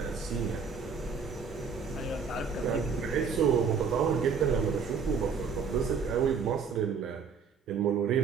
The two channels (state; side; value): quieter; left; 5.8 dB